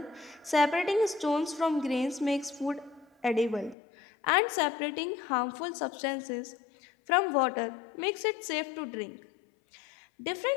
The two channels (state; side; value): drops out; right; at 3.8 s